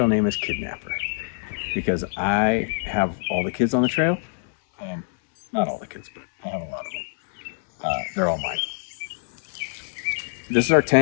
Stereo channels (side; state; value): right; silent; 62 dB below the other